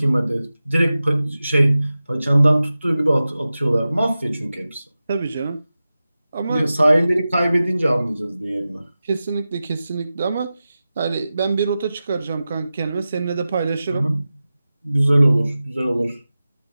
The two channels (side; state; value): both; inverted; correlation -0.95